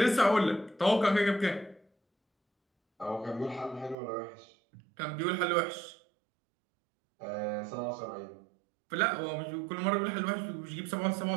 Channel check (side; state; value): left; drops out; at 4.0 s